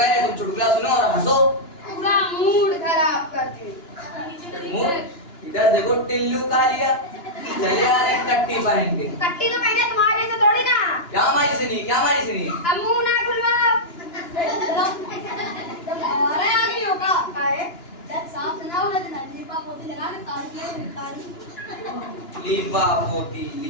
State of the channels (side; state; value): right; late; 2.9 ms